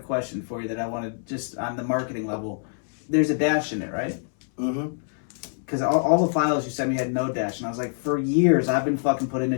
for you that I wanted, just on the marketing level. There's a dash in it, right? Mm-hmm. Because all the files you sent me had no dash, and I was like, for years I've been fucking putting a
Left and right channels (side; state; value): right; silent; 61 dB below the other